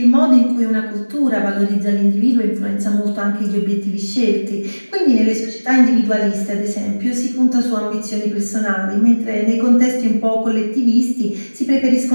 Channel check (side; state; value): both; inverted; correlation -1.00